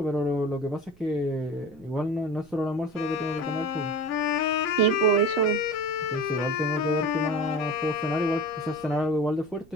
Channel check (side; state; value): right; noise; rumble, 25 dB below the sound